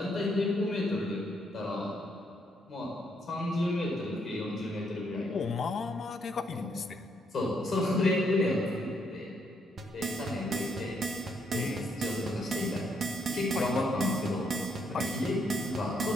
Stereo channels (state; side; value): normal; both; correlation 0.74